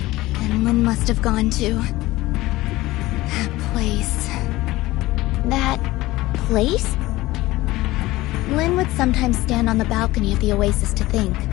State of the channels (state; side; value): quieter; right; 18.4 dB